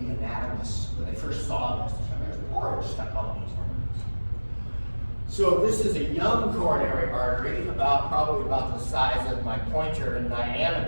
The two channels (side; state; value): both; inverted; correlation -1.00